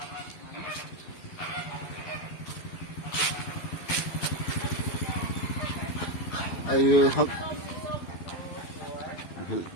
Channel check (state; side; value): late; right; 12 ms